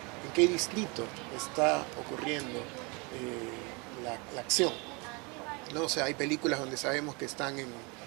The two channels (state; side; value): quieter; left; 29.9 dB